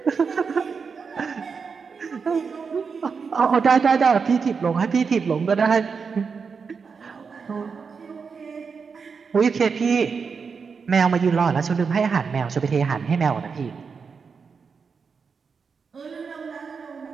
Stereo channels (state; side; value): quieter; left; 5.5 dB